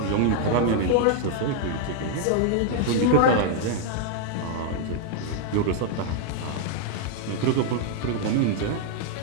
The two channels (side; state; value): both; different; correlation 0.00